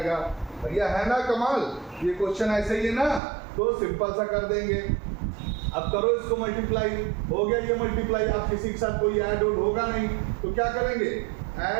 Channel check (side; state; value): left; drops out; at 3.2 s